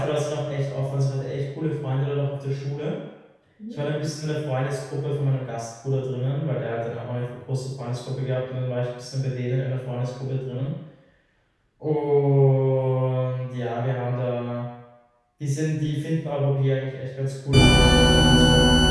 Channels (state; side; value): identical; both; correlation 1.00